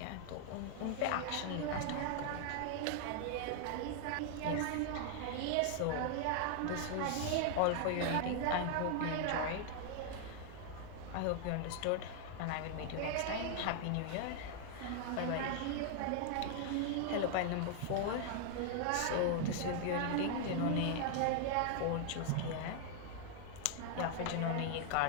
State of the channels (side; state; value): both; different; correlation 0.00